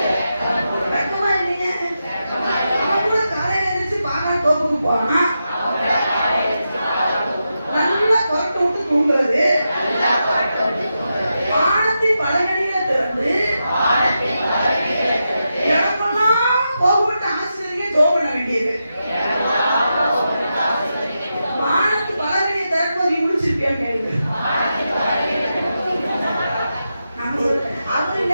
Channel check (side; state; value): both; inverted; correlation -0.88